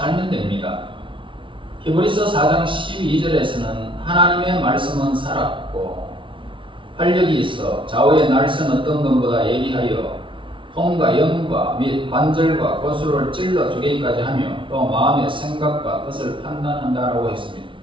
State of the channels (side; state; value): left; late; 0.25 ms